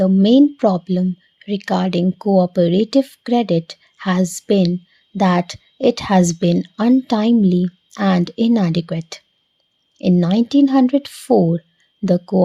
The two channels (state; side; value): identical; both; correlation 1.00